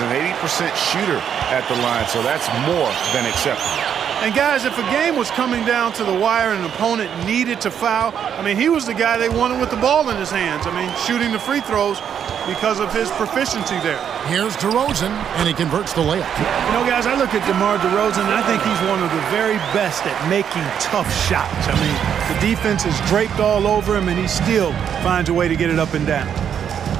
an 80% shooter at the line, so that's more than acceptable. And guys, if a game was coming down to the wire and an opponent needed to foul, I mean, he was the guy they wanted with the ball in his hands. I mean, shooting the free throws because of his proficiency there. Here's DeRozan, and he converts the layup. You know, guys, I look at DeMar DeRozan, and I think he's one of the very best at making tough shots. I mean, the defense is draped all over him, and he still finds a way to get it up and down.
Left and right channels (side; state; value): left; quieter; 8.5 dB